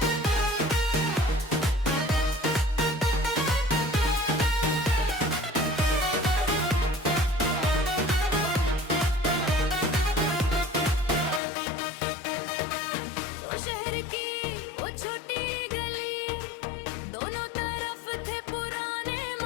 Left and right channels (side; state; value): right; drops out; at 11.4 s